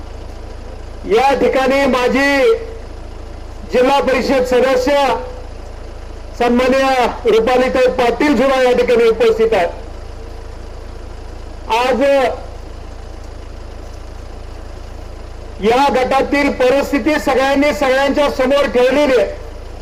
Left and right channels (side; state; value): both; identical; correlation 1.00